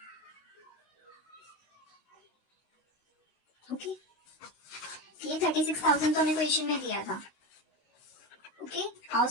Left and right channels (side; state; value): right; late; 16 ms